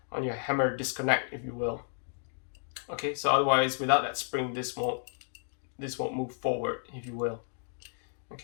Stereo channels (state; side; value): silent; right; digital silence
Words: hammer disconnect, if you will. Okay, so otherwise without that spring, this won't move forward, if you will.